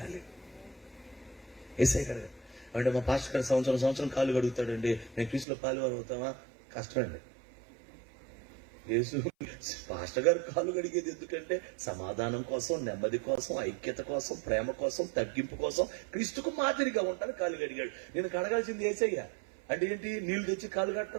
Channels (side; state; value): left; drops out; at 5.5 s